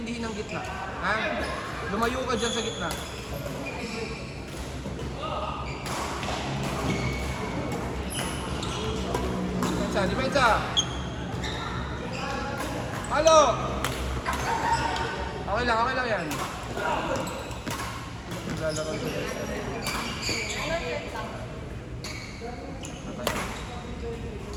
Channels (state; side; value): identical; both; correlation 1.00